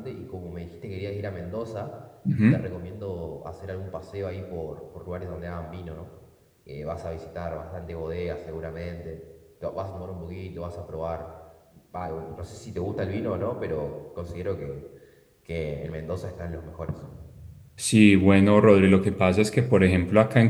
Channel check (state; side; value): identical; both; correlation 1.00